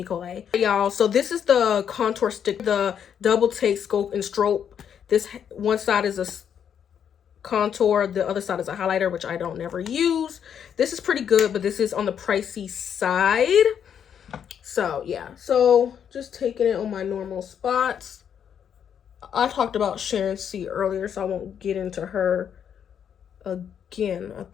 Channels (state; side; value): quieter; right; 8.4 dB